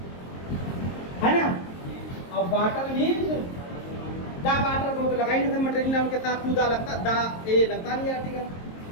है ना, और वाटर मीन्स दा। वाटर को तो लगा ही नहीं था, मटेरियल नाम के साथ टू दा लगता, दा ए लगता नहीं आर्टिकल।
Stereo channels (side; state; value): right; late; 23 ms